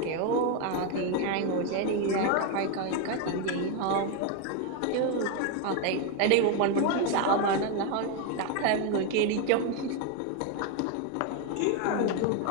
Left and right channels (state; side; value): different; both; correlation 0.01